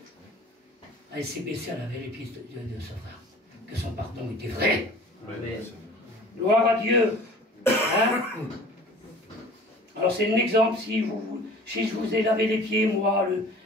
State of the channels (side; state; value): both; normal; correlation 0.45